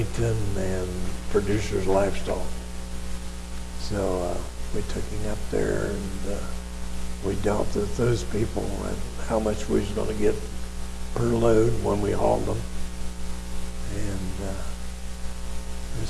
and Producers Livestock. So we took him up there, and we dealt with those people and how much we was gonna get per load when we hauled them. And, we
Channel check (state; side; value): identical; both; correlation 1.00